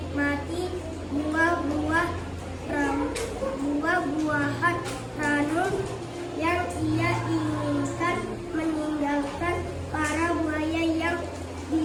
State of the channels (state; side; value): identical; both; correlation 1.00